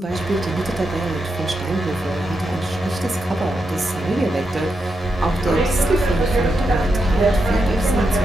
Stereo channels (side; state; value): both; normal; correlation 0.85